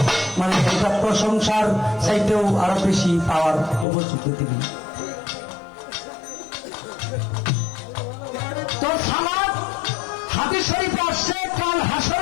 মানে এটা প্রশংসার চাইতেও আরো বেশি পাওয়ার উপযুক্ত তিনি। তো সালাত হাদিস শরীফে আসছে, কাল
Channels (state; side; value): drops out; right; at 3.9 s